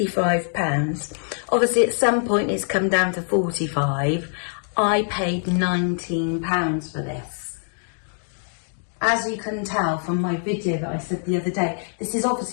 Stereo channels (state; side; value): silent; right; digital silence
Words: Obviously at some point it's come down to 45. I paid £19 for this. As you can tell from my video that I said the other day, this is